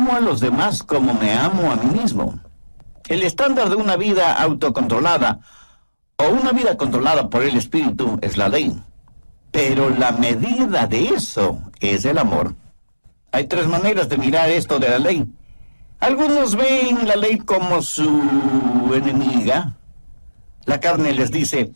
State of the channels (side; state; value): both; inverted; correlation -1.00